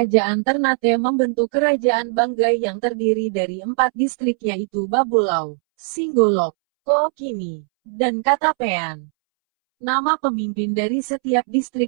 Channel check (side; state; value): left; silent; 66 dB below the other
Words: Ternate membentuk Kerajaan Banggai yang terdiri dari 4 distrik yaitu Babulau, Singgolok, Kookini, dan Katapean. Nama pemimpin dari setiap